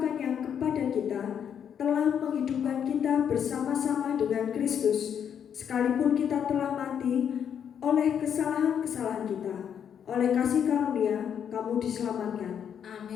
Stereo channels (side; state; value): right; quieter; 8.3 dB